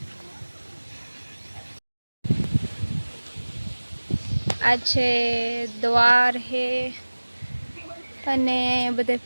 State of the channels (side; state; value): both; inverted; correlation -1.00